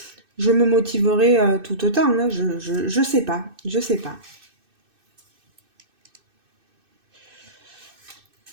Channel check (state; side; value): late; left; 2.6 ms